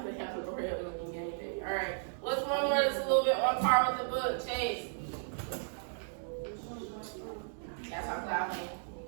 they have an Oreo looking anything? Alright. What's one word that's a little bit on par with the book? Chase. That's how cloud came.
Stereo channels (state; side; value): silent; left; digital silence